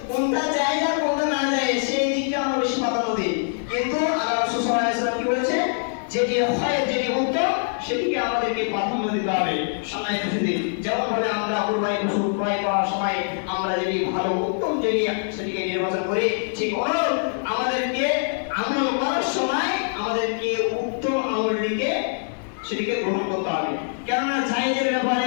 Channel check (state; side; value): silent; right; digital silence